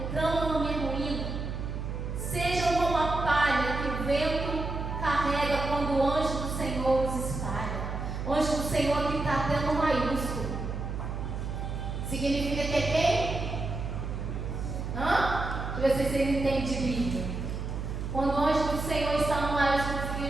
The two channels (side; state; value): right; noise; hum, 4 dB below the sound